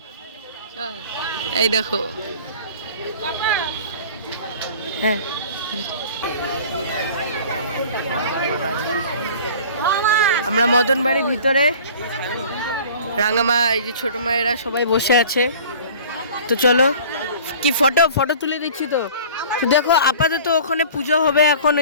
চল। এই দেখো, হ্যাঁ আমরা মদন বাড়ির ভিতরে, রাঙামা এই যে ছোট মায়েরা সবাই বসে আছে। তো চলো, কি ফটো ফটো তুলে দিচ্ছি। তো তো দেখো আপাতত ওখানে পুজো হবে এখন।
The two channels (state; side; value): inverted; both; correlation -0.45